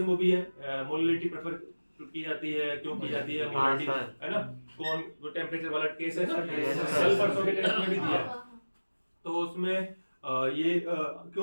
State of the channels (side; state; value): both; inverted; correlation -1.00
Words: वो भी है, मोलिलिटी प्रेफर की जाती है, क्यों की जाती है मोलिलिटी, है ना, कौन वो टेम्परेचर वाला केस है ना, कल परसों के टेस्ट में भी दिया है, तो उसमें ये